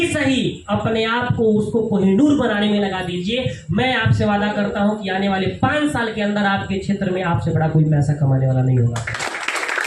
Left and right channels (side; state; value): both; identical; correlation 1.00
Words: सही अपने आप को उसको कोहिनूर बनाने में लगा दीजिए। मैं आपसे वादा करता हूं कि आने वाले 5 साल के अंदर आपके क्षेत्र में आपसे बड़ा कोई पैसा कमाने वाला नहीं होगा।